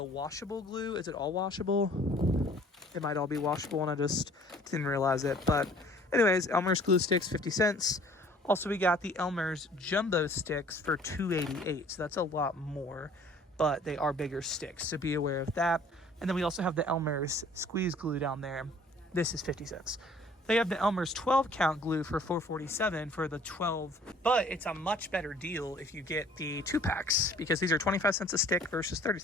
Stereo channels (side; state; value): both; normal; correlation 0.54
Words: washable glue. Is it all washable? It might all be washable and I just didn't realize it. But anyways, Elmer's glue sticks, 50 cents. Also, we got the Elmer's jumbo sticks for $2.88. So that's a lot more, but they are bigger sticks. So be aware of that. And then we also have the Elmer's squeeze glue down there. This is 50 cents. They have the Elmer's 12 count glue for $4.47 for the 12, but it's a much better deal if you get the 2-packs because these are 25 cents a stick versus